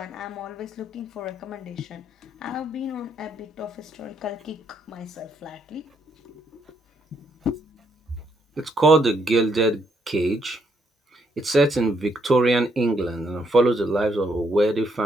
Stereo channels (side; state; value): both; normal; correlation 0.74